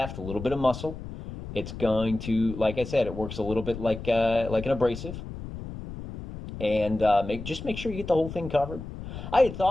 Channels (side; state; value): left; noise; rumble, 10 dB below the sound